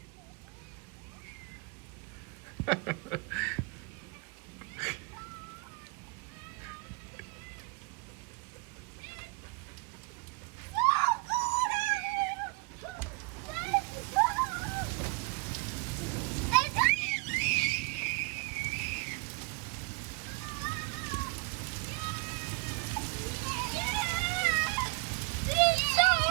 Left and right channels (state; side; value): quieter; left; 29.6 dB